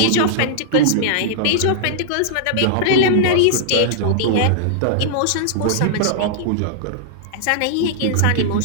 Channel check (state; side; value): different; both; correlation -0.01